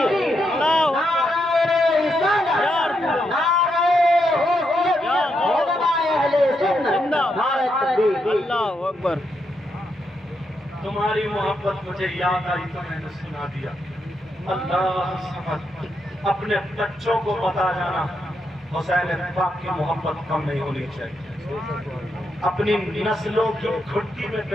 اللہ اکبر۔ تمہاری محبت مجھے یاد آئی تو میں نے سنا دیا۔ اللہ سمجھ اپنے بچوں کو بتا جانا حسین پاک کی محبت کم نہیں ہونی چاہیے، اپنی نسلوں کی گھٹی میں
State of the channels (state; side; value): normal; both; correlation 0.81